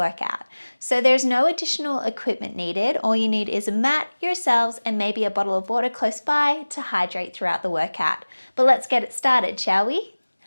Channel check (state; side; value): inverted; both; correlation -1.00